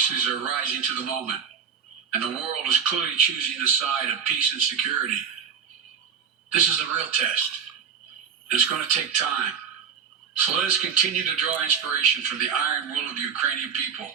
are rising to the moment, and the world is clearly choosing the side of peace and security. This is a real test. It's going to take time. So let us continue to draw inspiration from the iron will of the Ukrainian people.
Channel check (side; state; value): left; quieter; 6.9 dB